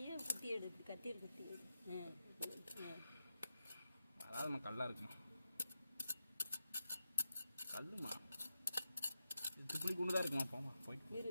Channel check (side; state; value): both; inverted; correlation -0.88